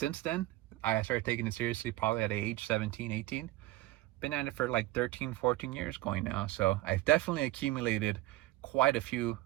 then, I started taking it seriously probably at age 17, 18. Been at it for like 13, 14 years going now. So I've definitely accumulated quite a few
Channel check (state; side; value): quieter; left; 17.4 dB